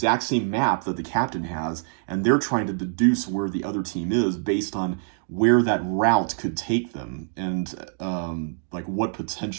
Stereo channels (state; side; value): silent; left; digital silence